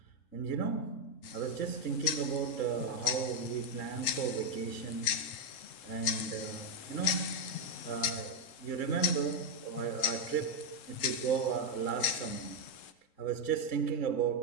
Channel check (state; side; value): late; right; 3.7 ms